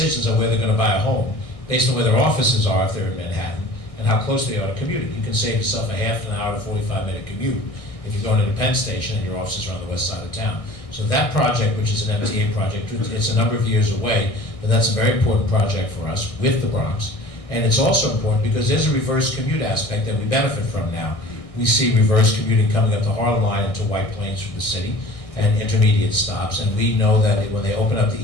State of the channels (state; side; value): late; right; 1.6 ms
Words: on where they're going to buy a home based on where their offices are if they're in Manhattan and how close they are to commuting. You can save yourself a half an hour to 45-minute commute if you're going to the Penn Station and your offices are on the west side of town. So that project, which is an MTA project, it's a number of years away, but that's a very important project for us with the Bronx. And it's also important because there's a reverse commute aspect that we benefit from now. We see reverse commuting coming up the Harlem line into White Plains from the city and intermediate stops, and we know that when they open up the